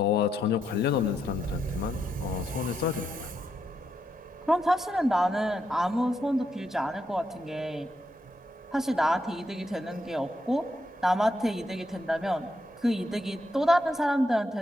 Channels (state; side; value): normal; both; correlation 0.81